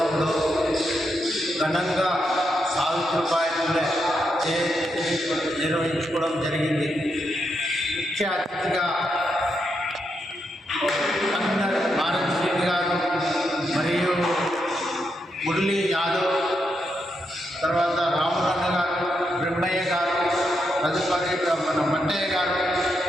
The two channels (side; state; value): both; normal; correlation 0.82